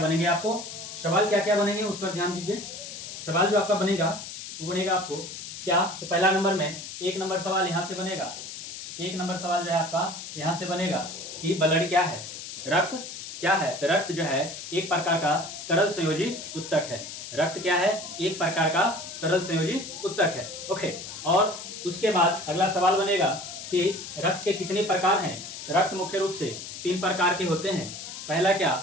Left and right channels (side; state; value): left; noise; hiss, 10 dB below the sound